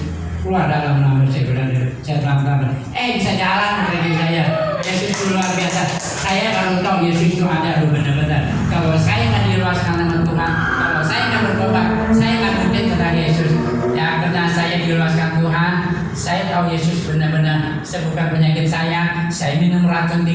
keluar dalam nama saya pelan-pelan. Bisa jalan kaki saya. Yesus itu luar biasa. Saya baru tahu Yesus itu ada benar-benar. Kalau saya nggak diluaskan nama Tuhan, kalau saya nggak bertobat, saya nggak mungkin kenal Yesus. Ya karena saya diluaskan Tuhan, saya tahu Yesus benar-benar sembuhkan penyakit saya. Saya minum racun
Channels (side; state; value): both; identical; correlation 1.00